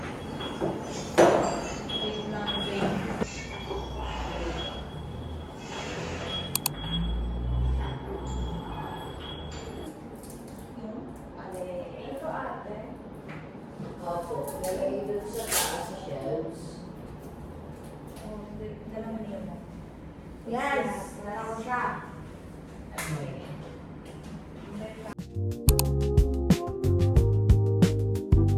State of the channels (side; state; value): both; identical; correlation 1.00